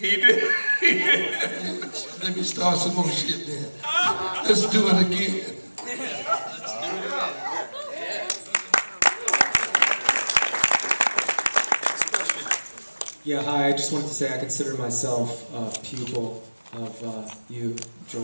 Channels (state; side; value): inverted; both; correlation -1.00